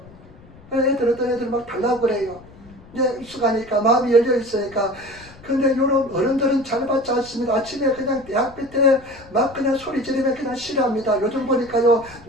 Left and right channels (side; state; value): left; noise; rumble, 22 dB below the sound